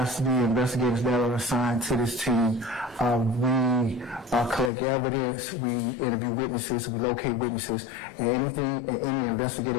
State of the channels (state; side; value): drops out; right; at 4.7 s